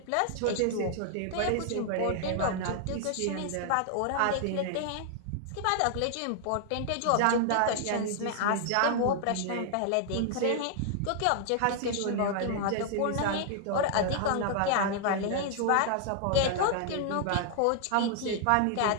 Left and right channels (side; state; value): both; different; correlation 0.00